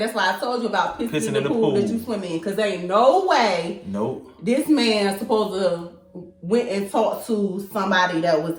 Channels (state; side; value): identical; both; correlation 1.00